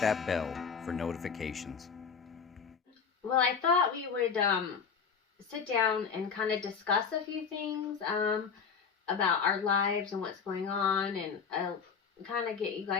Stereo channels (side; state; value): right; quieter; 6.0 dB